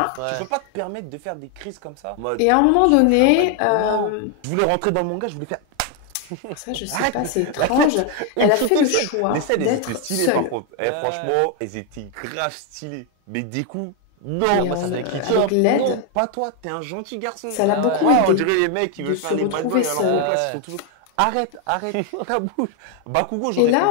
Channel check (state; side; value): different; both; correlation 0.01